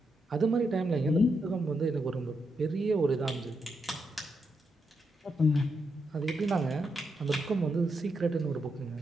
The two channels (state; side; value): normal; both; correlation 0.82